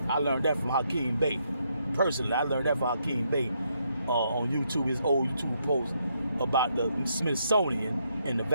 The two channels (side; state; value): both; inverted; correlation -0.76